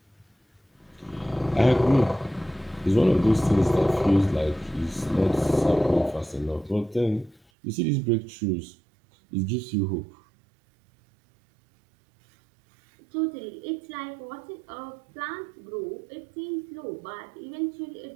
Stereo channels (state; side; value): drops out; left; at 7.4 s